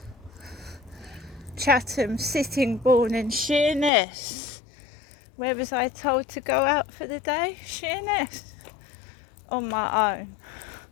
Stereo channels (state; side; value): drops out; right; at 3.9 s